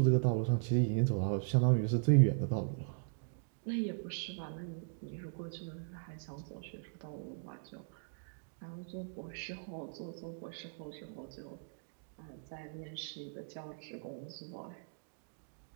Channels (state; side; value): silent; left; digital silence